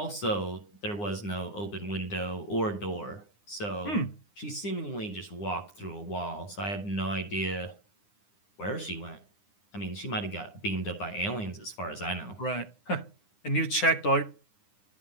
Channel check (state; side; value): late; right; 9.8 ms